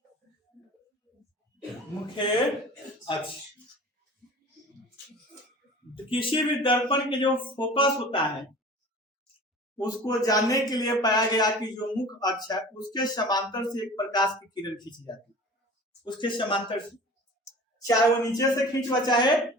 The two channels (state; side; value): normal; both; correlation 0.41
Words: मुख्य अक्ष। तो किसी भी दर्पण के जो फोकस होता है उसको जानने के लिए पाया गया कि जो मुख्य अक्ष है उसके समांतर से एक प्रकाश की किरण खींची जाती है, उसके समांतर से, चाहे वो नीचे से खींचवा चाहे